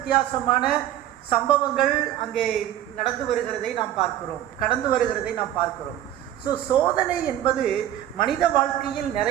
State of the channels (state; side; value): quieter; left; 12.2 dB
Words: சம்பவங்கள் அங்கே நடந்து வருகிறதை நாம் பார்க்கிறோம், கடந்து வருகிறதை நாம் பார்க்கிறோம். சோதனை என்பது மனித வாழ்க்கையில்